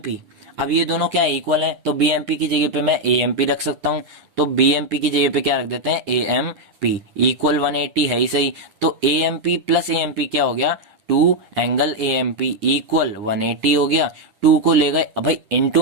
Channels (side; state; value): left; late; 10 ms